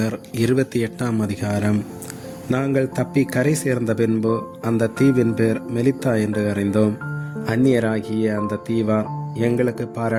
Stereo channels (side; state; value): both; identical; correlation 1.00